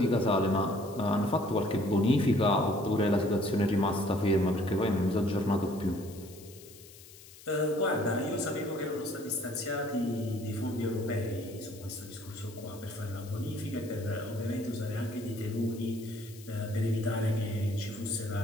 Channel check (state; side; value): noise; left; hiss, 20 dB below the sound